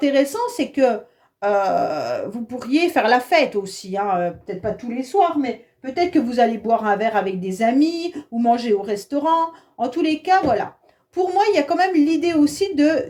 c'est que vous pourriez faire la fête aussi, hein, peut-être pas tous les soirs, mais peut-être que vous allez boire un verre avec des amis ou manger au restaurant. En tous les cas, voilà. Pour moi, il y a quand même l'idée aussi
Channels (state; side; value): identical; both; correlation 1.00